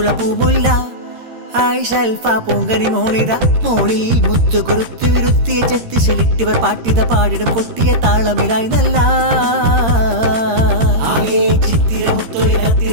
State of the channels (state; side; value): late; left; 13 ms